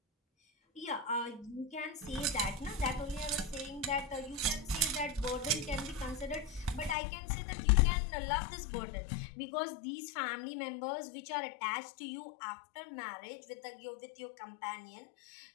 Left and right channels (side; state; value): right; drops out; at 7.0 s